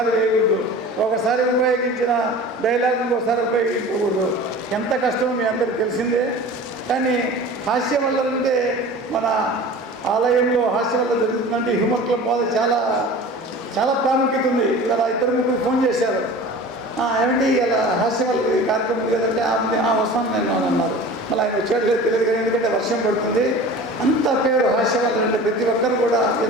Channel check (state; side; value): normal; both; correlation 0.39